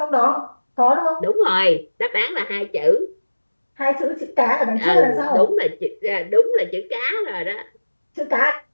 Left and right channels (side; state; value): both; inverted; correlation -1.00